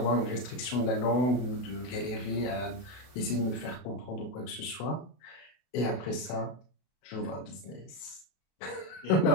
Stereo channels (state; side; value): late; right; 32 ms